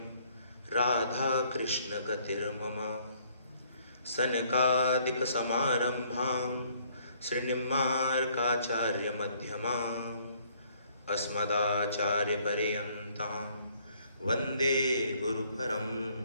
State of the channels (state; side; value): inverted; both; correlation -0.64